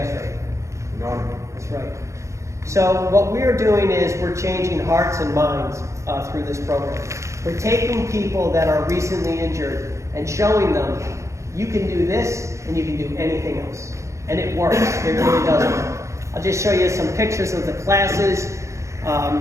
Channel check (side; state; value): left; late; 0.14 ms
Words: rate? None. That's right. So what we're doing is we're changing hearts and minds through this program. We're taking people that are recently injured and showing them you can do this and you can do anything else. And it works. It really does work. I'll just show you some pictures of the classes.